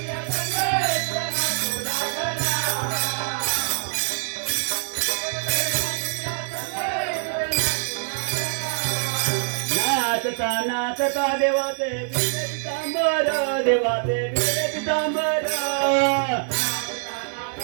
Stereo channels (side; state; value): left; silent; 57 dB below the other